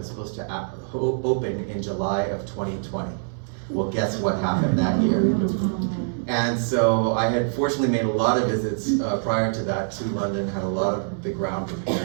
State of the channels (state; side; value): silent; left; digital silence